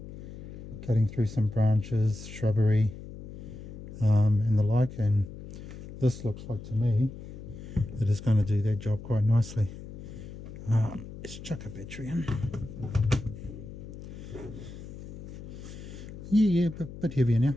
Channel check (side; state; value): left; noise; hum, 12 dB below the sound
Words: through some branches, shrubbery, and the like, and this looks like to me that it's going to do that job quite nicely. Let's chuck a battery in. Yeah, bit heavier now.